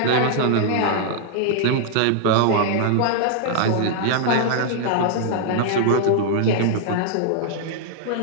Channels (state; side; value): different; both; correlation 0.00